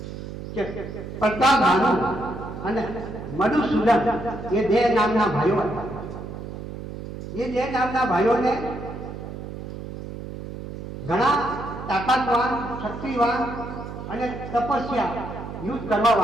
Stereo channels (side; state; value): right; noise; hum, 9 dB below the sound